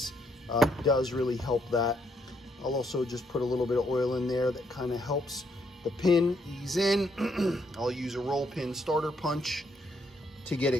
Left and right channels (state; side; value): normal; both; correlation 0.73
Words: does really help that. I'll also just put a little bit of oil in there that kind of helps the pin ease in. I'll use a roll pin starter punch to get